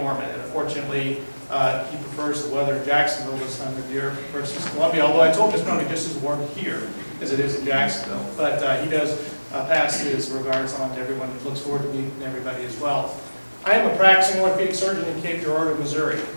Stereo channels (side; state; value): both; inverted; correlation -1.00